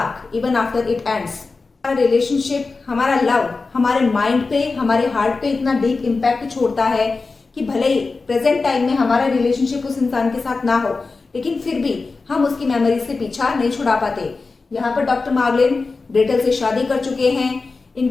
even after it ends. हमारा relationship, हमारा love हमारे mind पे, हमारे heart पे इतना deep impact छोड़ता है कि भले ही प्रेजेंट टाइम में हमारा रिलेशनशिप उस इंसान के साथ ना हो, लेकिन फिर भी हम उसकी मेमोरीज से पीछा नहीं छुड़ा पाते। यहाँ पर डॉक्टर मार्गलिन ग्रेटल से शादी कर चुके हैं,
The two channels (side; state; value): right; quieter; 4.0 dB